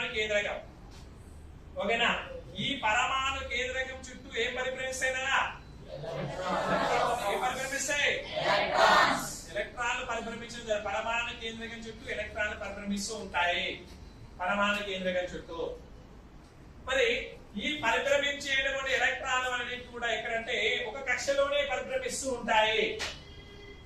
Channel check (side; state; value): both; identical; correlation 1.00